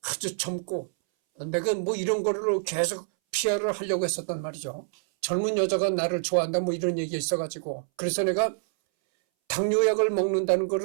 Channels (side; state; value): left; silent; 60 dB below the other